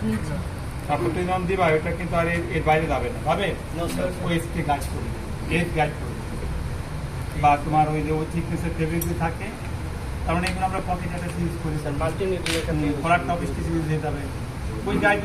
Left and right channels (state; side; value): identical; both; correlation 1.00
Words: তারপর তুমি যখন দিবা ওটা কিন্তু আর এর বাইরে যাবে না, যাবে ওই স্টে গাইড করবে, এজ গাইড করবে। বা তোমার ওই যে ওই থিকনেসের ফেব্রিক থাকে, তার মানে এগুলো আমরা পকেট একটা ইউজ করি, কলার টপ স্টিচ ইউজ হয়ে যাবে, ওই